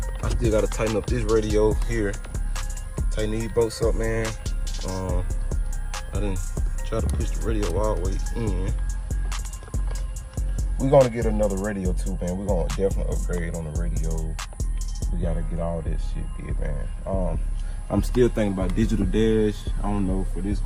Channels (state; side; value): identical; both; correlation 1.00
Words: I still gotta tighten up this radio here. Tighten these bolts up, man. I didn't try to push the radio all the way in. We're gonna get another radio too, man. We're gonna definitely upgrade on the radio. We gotta get all this shit did, man. I'm still thinking about digital dash. I don't know for this